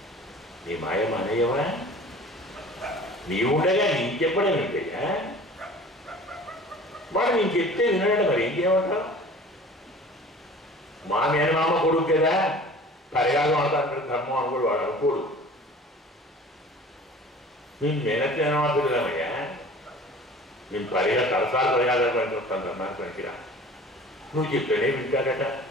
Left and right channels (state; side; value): normal; both; correlation 0.44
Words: నీ మాయ మానేయవా? నీవుండగా నీకు చెప్పడం ఏంటయ్యా? వాడు నేను చెప్తే వినడం, మరి ఏం చేయమంటావు? మా మేనమామ కొడుకు కదా, పరిగాలు అంటారు, ధర్మం అనుకోడు, వాడు అనుకోడు. నేను మేనమామయ్యా, నేను పరిగా తలసాలు పరిగాలు పనికి వస్తాను, ధర్మానికి పనికిరా. నువ్వు చెప్తేనే వింటాడట.